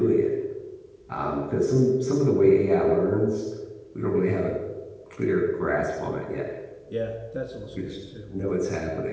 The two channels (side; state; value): both; identical; correlation 1.00